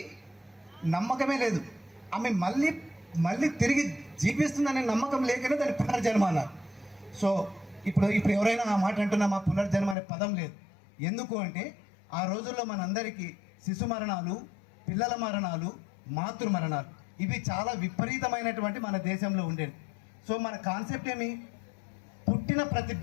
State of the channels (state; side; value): drops out; right; at 10.0 s